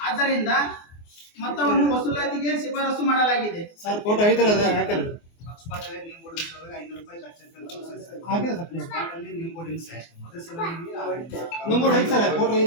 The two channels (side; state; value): right; late; 24 ms